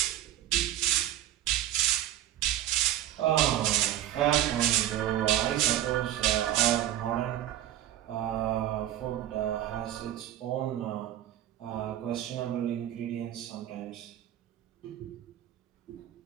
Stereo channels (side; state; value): left; quieter; 12.5 dB